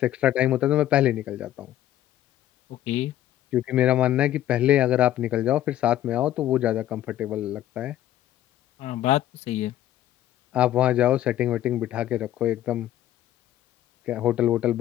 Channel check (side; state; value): right; quieter; 12.9 dB